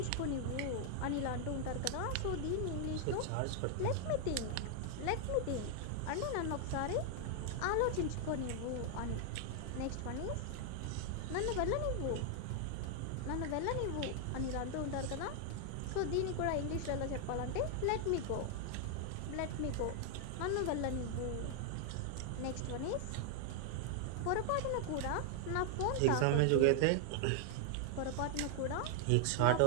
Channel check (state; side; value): different; both; correlation 0.00